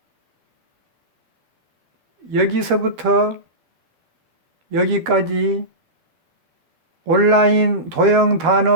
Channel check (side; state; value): left; late; 12 ms